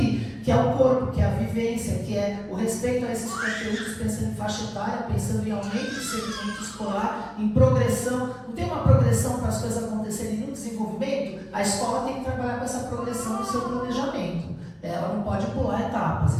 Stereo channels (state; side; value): identical; both; correlation 1.00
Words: que é o corpo, que é a vivência, que é o respeito a esses conteúdos, pensando em faixa etária, pensando em aumento de segmento escolar, em progressão. Não tem uma progressão para as coisas acontecerem no desenvolvimento? A escola tem que trabalhar com essa progressão no seu planejamento. Ela não pode pular etapas,